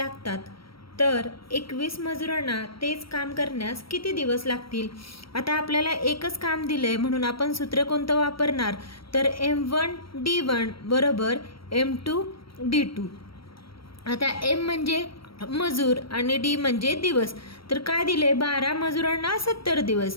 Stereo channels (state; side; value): late; right; 0.75 ms